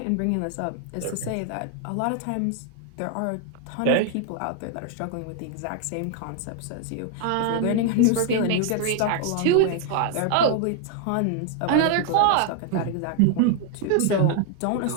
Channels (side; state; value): both; different; correlation 0.00